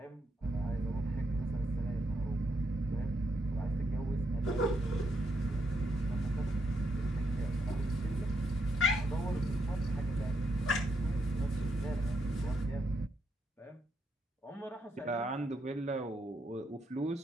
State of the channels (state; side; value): normal; both; correlation 0.79